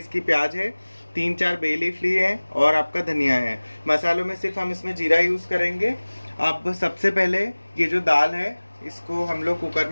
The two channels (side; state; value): both; inverted; correlation -1.00